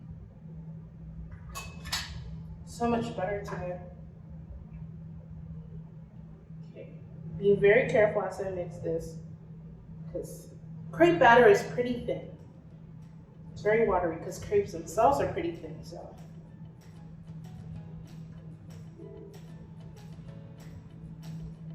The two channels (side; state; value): both; identical; correlation 1.00